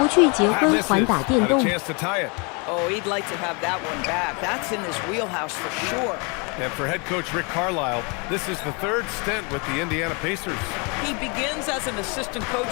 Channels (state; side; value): quieter; right; 32.1 dB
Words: 去结婚还打电 Had a 动。 chance to tie it. Oh, he'd like to have that one back. That's in his wheelhouse for sure. And for head coach Rick Carlisle, this is the 3rd stint with the Indiana Pacers. He begins as an assistant coach